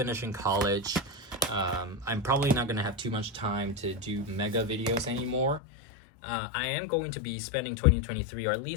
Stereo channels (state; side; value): drops out; right; at 5.6 s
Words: college, I'm probably not going to have too much time to do mega videos anymore. I am going to be spending 2023, or at